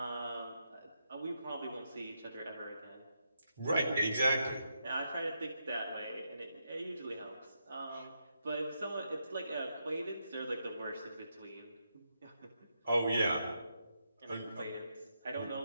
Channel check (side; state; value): both; inverted; correlation -0.82